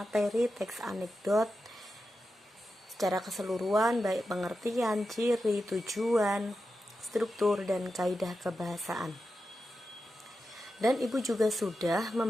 teks anekdot secara keseluruhan, baik pengertian, ciri, tujuan, struktur, dan kaidah kebahasaan. Dan Ibu juga sudah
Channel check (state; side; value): normal; both; correlation 0.90